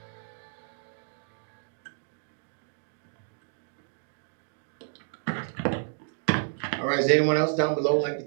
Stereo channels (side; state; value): left; silent; digital silence